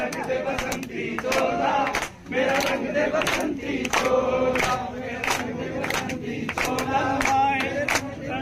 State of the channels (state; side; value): identical; both; correlation 1.00